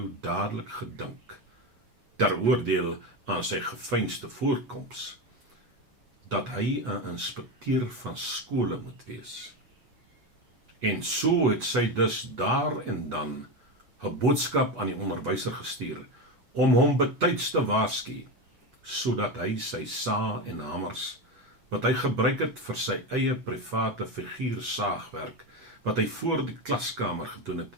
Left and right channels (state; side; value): late; left; 8.1 ms